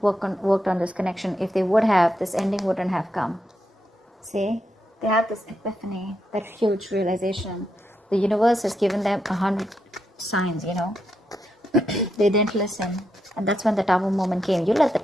worked on this connection. If they would have, this ending wouldn't have come. See? They have this epiphany, that huge realization. The universe has given them 100 signs, you know. They didn't listen. And that's when the tower moment came. You let the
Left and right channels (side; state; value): both; normal; correlation 0.83